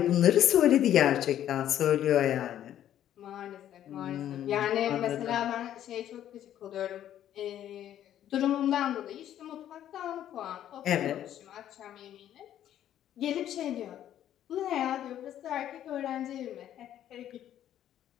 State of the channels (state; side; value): quieter; right; 11.3 dB